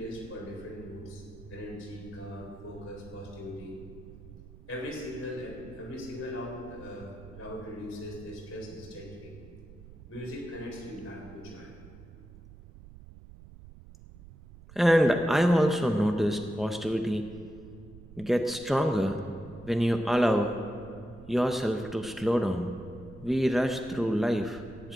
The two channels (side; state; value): right; noise; rumble, 18 dB below the sound